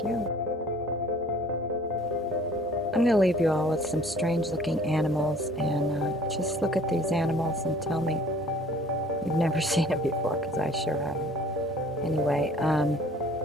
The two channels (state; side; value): normal; both; correlation 0.52